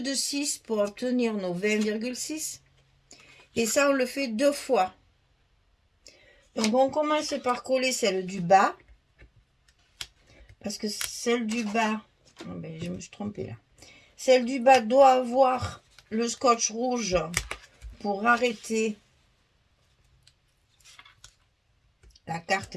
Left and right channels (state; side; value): identical; both; correlation 1.00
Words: pour obtenir nos 20,6. Et ça, on le fait deux fois. Donc, on commence par coller celle du bas. Parce que celle du bas... Oh ben, je me suis trompée là. Celle du bas doit avoir le scotch rouge pour arrêter la